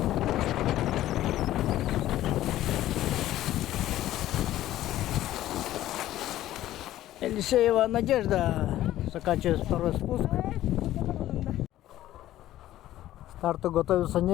Елисеева Надежда заканчивает второй спуск. К старту готовится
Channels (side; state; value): right; quieter; 13.9 dB